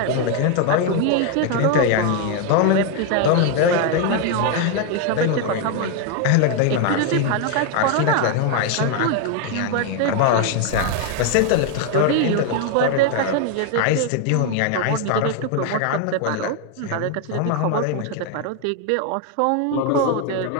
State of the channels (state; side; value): different; both; correlation 0.01